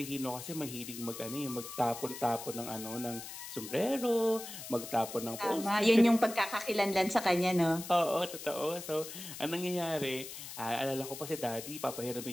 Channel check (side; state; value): left; noise; hiss, 10 dB below the sound